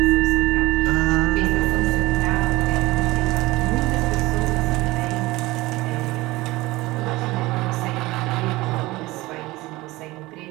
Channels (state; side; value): quieter; left; 20.1 dB